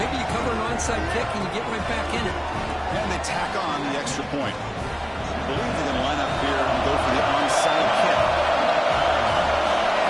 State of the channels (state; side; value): identical; both; correlation 1.00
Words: you cover an onside kick and you get right back in it. And they tack on the extra point. I believe they're going to line up here and go for the onside kick.